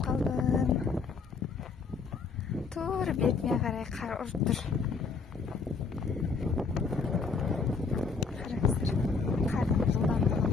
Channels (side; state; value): right; quieter; 4.8 dB